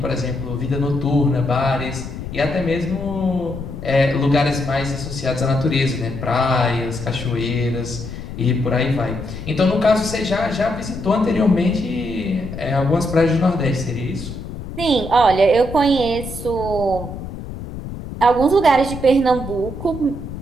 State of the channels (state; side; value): noise; left; rumble, 9 dB below the sound